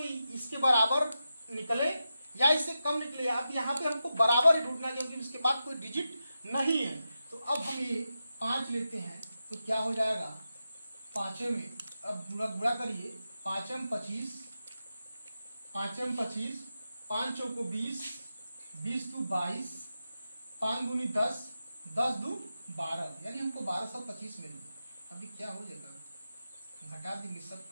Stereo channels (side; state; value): both; inverted; correlation -0.90